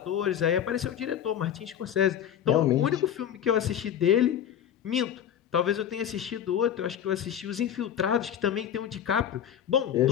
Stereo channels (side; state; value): right; quieter; 9.6 dB